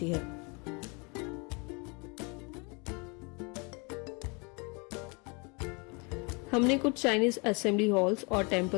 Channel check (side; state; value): right; quieter; 31.1 dB